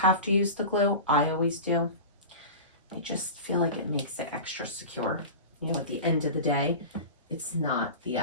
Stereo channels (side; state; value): both; inverted; correlation -0.31